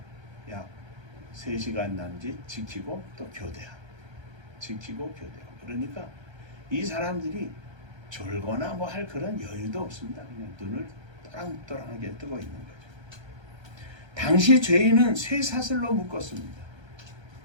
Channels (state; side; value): late; left; 1.3 ms